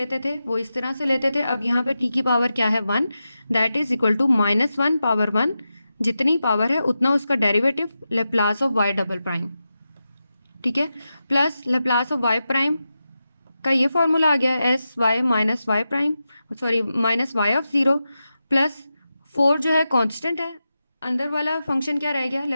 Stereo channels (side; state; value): both; inverted; correlation -0.91